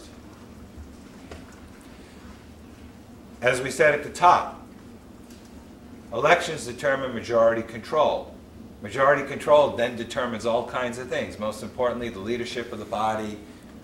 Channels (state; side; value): identical; both; correlation 1.00